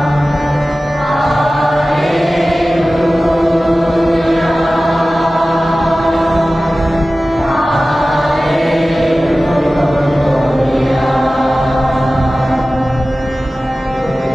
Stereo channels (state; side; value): normal; both; correlation 0.96